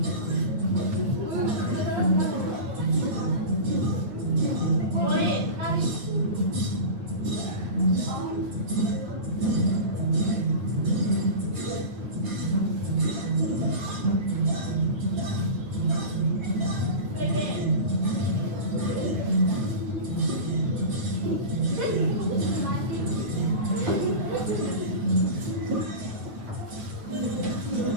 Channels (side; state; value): left; late; 8.9 ms